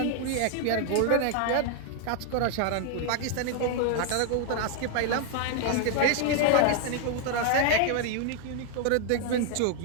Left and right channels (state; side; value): different; both; correlation 0.00